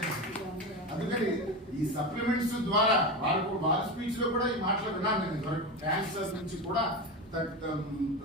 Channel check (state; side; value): normal; both; correlation 0.21